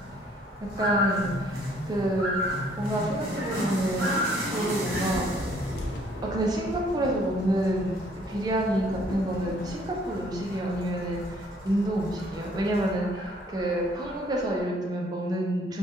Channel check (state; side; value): normal; both; correlation 0.62